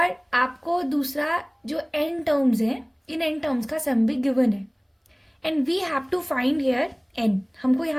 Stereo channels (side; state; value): both; identical; correlation 1.00